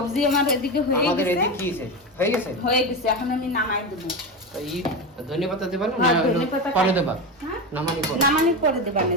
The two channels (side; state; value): both; normal; correlation 0.19